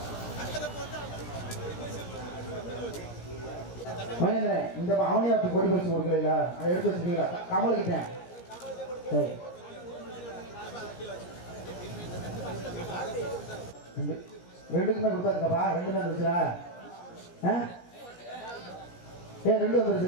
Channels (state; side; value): late; right; 17 ms